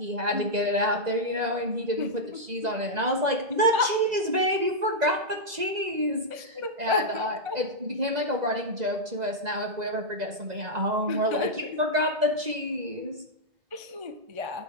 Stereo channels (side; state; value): left; late; 2.0 ms